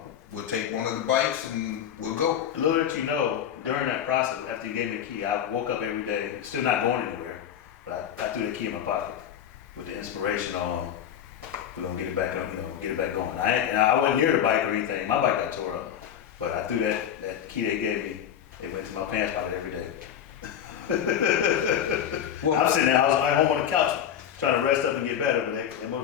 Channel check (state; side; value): quieter; right; 9.5 dB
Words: We'll take one of the bikes and we'll go. Little did you know, during that process, after you gave me the key, I woke up every day, still not going anywhere, but I threw the key in my pocket with the inspiration on, we're gonna get it back on, get it back going. I wasn't near the bike or anything. My bike got tore up, but I threw that key they gave me. It went to my pants pocket every day. Well, I'm sitting there, I was at home on the couch trying to rest up and get better, but that